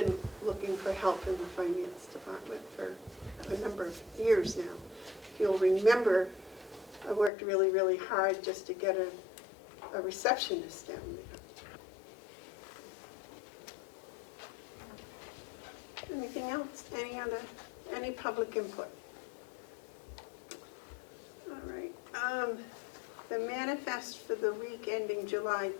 looking for help in the finance department for a number of years now. If you'll remember, I worked really, really hard just to get a receptionist down there. Anything else? Any public input? All right. The manifest for the week ending July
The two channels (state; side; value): drops out; right; at 7.3 s